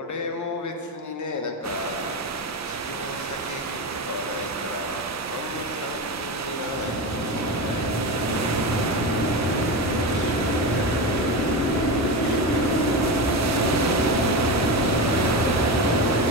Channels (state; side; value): normal; both; correlation 0.19